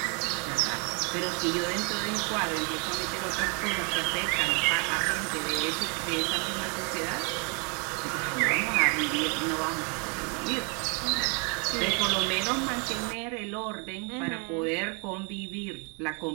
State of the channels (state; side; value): quieter; left; 35.0 dB